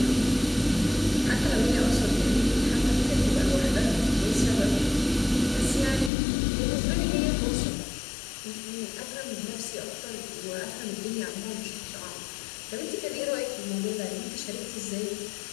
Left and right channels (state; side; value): drops out; right; at 6.1 s